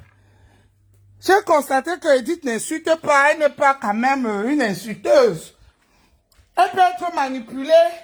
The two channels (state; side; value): identical; both; correlation 1.00